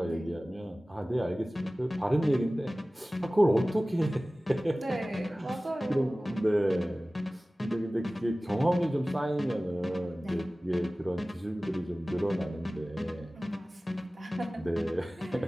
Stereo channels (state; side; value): normal; both; correlation 0.97